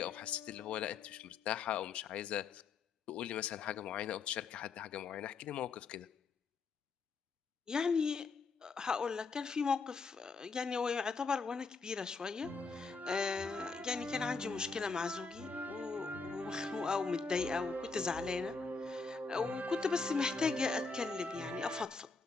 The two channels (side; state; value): right; quieter; 4.5 dB